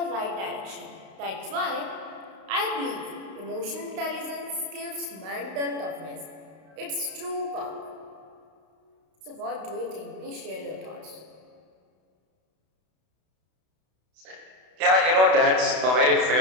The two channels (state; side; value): late; left; 32 ms